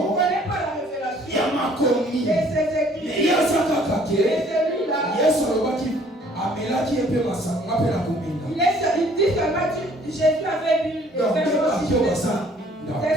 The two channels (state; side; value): normal; both; correlation 0.58